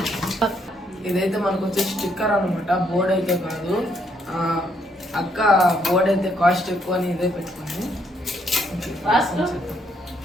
ఇదైతే మనకు వచ్చే స్టిక్కర్ అనమాట, బోర్డ్ అయితే కాదు. అక్క బోర్డ్ అయితే కాస్ట్ ఎక్కువ అని ఇదే పెట్టుకుంది.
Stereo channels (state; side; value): normal; both; correlation 0.72